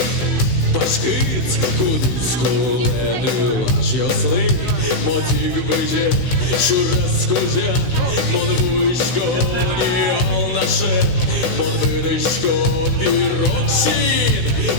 пашкиць куліску лепі щасливий, мотик биче, шураско-жа, монвуйсько, ніал наше, монвиришко, піроксин,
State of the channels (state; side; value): late; right; 17 ms